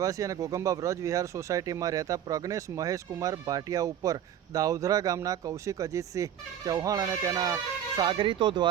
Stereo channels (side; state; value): left; quieter; 10.0 dB